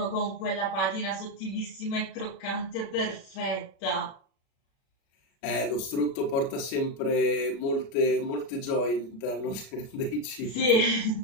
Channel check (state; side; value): late; right; 36 ms